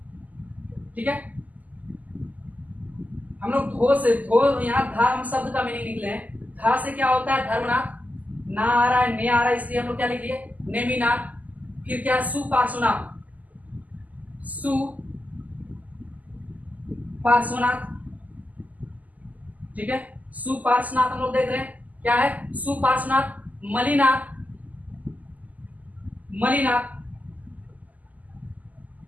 ठीक है। हम लोग धो से, धो यहाँ धा हम शब्द का मीनिंग लिख लें, धा से क्या होता है धर्मनाथ, ना आ रहा है ने आ रहा है, इसलिए हम लोग क्या लिख लिए नेमिनाथ। फिर क्या सुपार्श्वनाथ, सु पार्श्वनाथ, ठीक है, सुपार्श्वनाथ हम लोग देख रहे हैं क्या है सुपार्श्वनाथ। मलिनाथ, मलिनाथ,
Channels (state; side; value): late; left; 0.078 ms